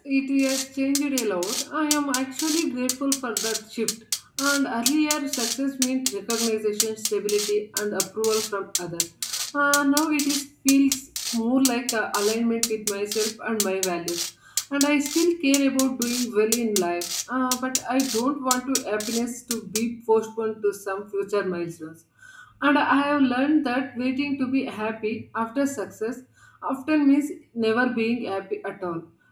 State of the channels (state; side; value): identical; both; correlation 1.00